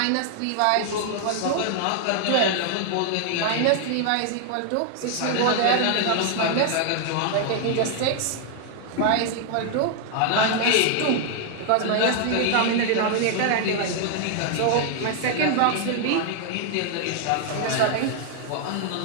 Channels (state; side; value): different; both; correlation 0.00